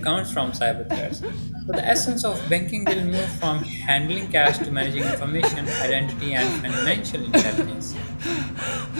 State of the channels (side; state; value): both; inverted; correlation -1.00